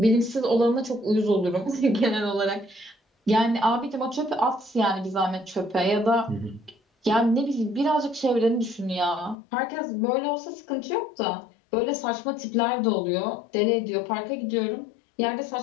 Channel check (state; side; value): drops out; right; at 9.3 s